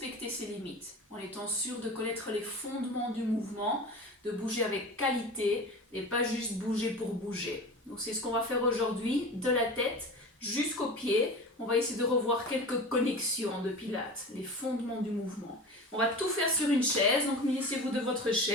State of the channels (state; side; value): normal; both; correlation 0.33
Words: ses limites, en étant sûr de connaître les fondements du mouvement, de bouger avec qualité et pas juste bouger pour bouger. Donc c'est ce qu'on va faire aujourd'hui, de la tête jusqu'aux pieds. On va essayer de revoir quelques connexions de Pilates, les fondements du mouvement. On va tout faire sur une chaise, donc munissez-vous de votre